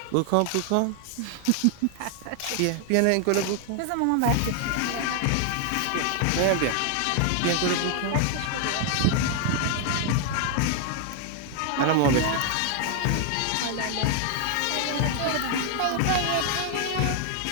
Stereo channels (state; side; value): different; both; correlation 0.00